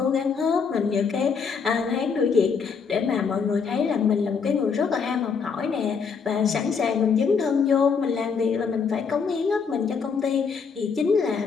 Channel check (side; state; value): right; quieter; 5.8 dB